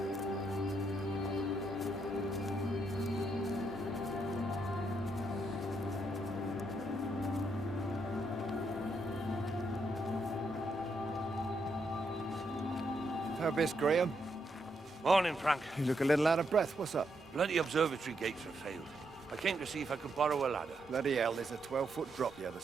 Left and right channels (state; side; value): normal; both; correlation 0.78